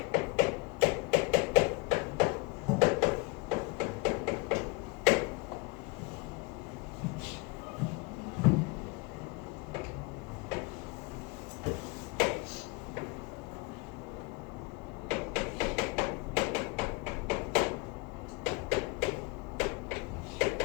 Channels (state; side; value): quieter; right; 26.7 dB